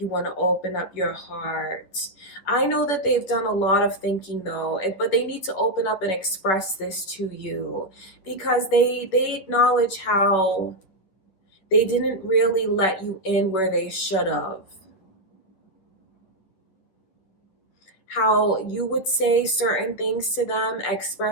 want to open up your heart. I know that they've done a lot of thinking though, but they need to open up and express this to you, because they acknowledge how they didn't really let you in where they should have. How you would say certain things to them,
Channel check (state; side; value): late; right; 10 ms